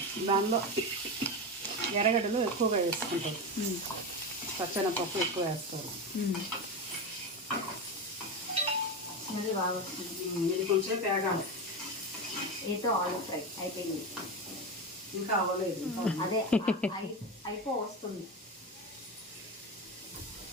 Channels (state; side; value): normal; both; correlation 0.18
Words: దానిలో ఎర్రగడ్డలు ఎక్కువగా వేసుకుంటారు. పచ్చెనపప్పు ఎక్కువ వేస్తారు. స్మెల్ బాగా వస్తుంది. ఇది కొంచెం తేగాలి. ఏతో ఆలు ఫ్రై అయిపోయింది. ఇంకా అవ్వలేదు. అదే అయిపో వస్తుంది.